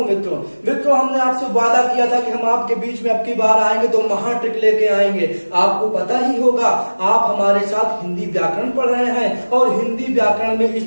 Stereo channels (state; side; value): inverted; both; correlation -1.00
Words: मित्रों हमने आपसे वादा किया था कि हम आपके बीच में अब की बार आएंगे तो महा ट्रिक लेके आएंगे। आपको पता ही होगा, आप हमारे साथ हिंदी व्याकरण पढ़ रहे हैं और हिंदी व्याकरण में